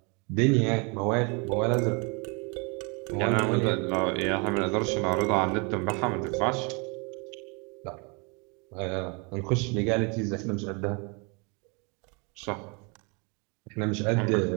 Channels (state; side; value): quieter; left; 32.1 dB